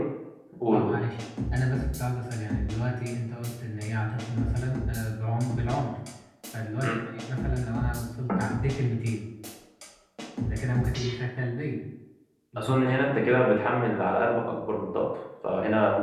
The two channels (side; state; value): both; identical; correlation 1.00